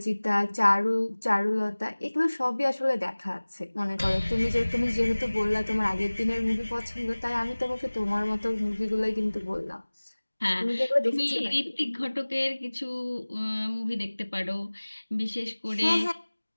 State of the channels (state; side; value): inverted; both; correlation -1.00